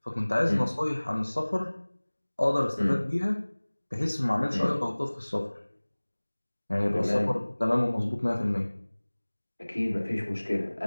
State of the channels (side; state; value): both; inverted; correlation -1.00